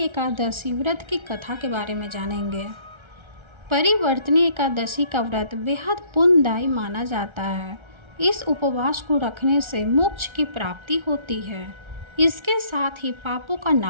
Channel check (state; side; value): late; left; 1.3 ms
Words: व्रत की कथा के बारे में जानेंगे। परिवर्तनी एकादशी का व्रत बेहद पुण्यदायी माना जाता है। इस उपवास को रखने से मोक्ष की प्राप्ति होती है। इसके साथ ही पापों का